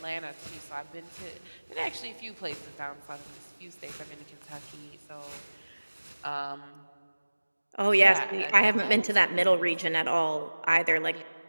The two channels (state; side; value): inverted; both; correlation -1.00